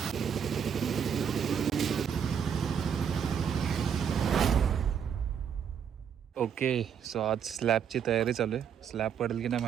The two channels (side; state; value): left; quieter; 7.8 dB